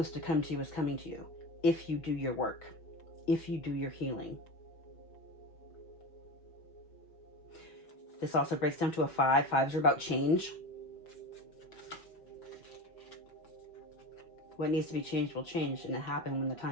to come to you is coming to you if you do your work, if you do your healing. This also breaks down to a 5. 5s are about change. What needs to be changed will change, and it happens when the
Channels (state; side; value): late; right; 6.1 ms